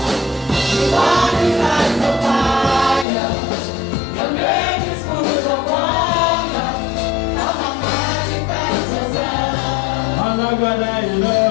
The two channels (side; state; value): right; drops out; at 3.1 s